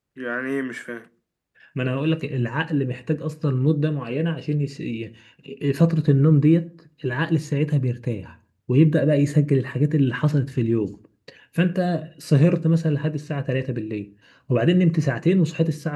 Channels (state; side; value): identical; both; correlation 1.00